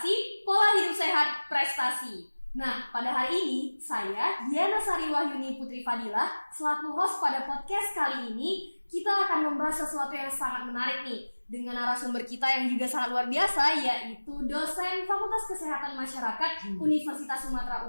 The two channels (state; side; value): inverted; both; correlation -1.00